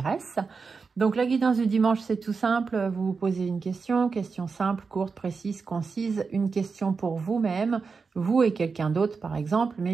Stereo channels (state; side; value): quieter; left; 4.9 dB